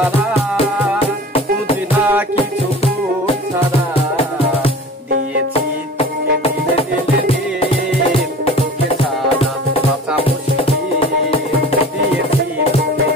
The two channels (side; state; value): both; normal; correlation 0.40